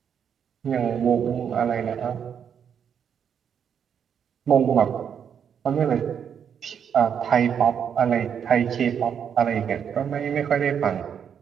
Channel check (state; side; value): quieter; left; 7.9 dB